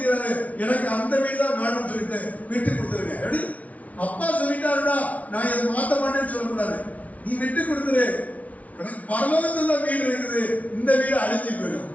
எனக்கு அந்த வீடு தான் வேணும்னு சொல்லிட்டு விட்டு கொடுத்துருங்க. எப்படி? அப்பா சொல்லிட்டாருடா, நான் இதை மாத்த மாட்டேன்னு சொல்லக்கூடாது. நீ விட்டு கொடுத்துரு, எனக்கு பரலோகத்துல வீடு இருக்குது, இந்த வீடு அழிஞ்சு போயிடும்.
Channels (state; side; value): late; right; 0.069 ms